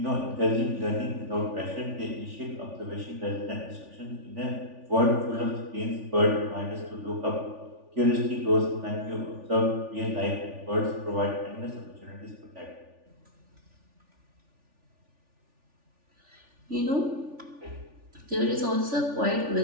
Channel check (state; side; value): late; left; 3.4 ms